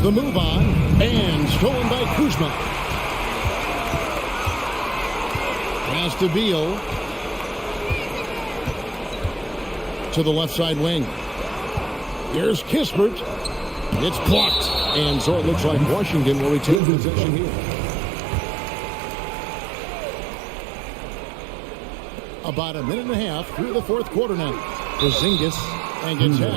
the move on. And stolen by Kuzma. Pass to Beal. To the left side wing. Here's Kispert. It's blocked. And so it looks like Washington will retain possession here. About a minute and a half through the fourth quarter now. Porzingis and gets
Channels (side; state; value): left; drops out; at 16.8 s